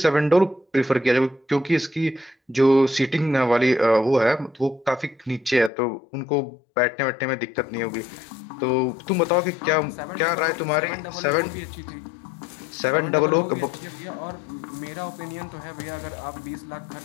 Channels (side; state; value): right; drops out; at 5.7 s